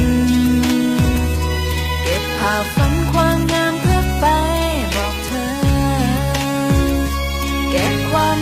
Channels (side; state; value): both; identical; correlation 1.00